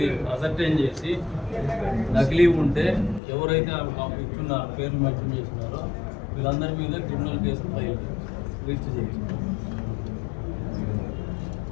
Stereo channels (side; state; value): right; drops out; at 3.2 s